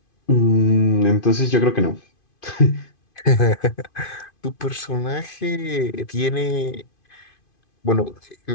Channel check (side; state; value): right; late; 2.5 ms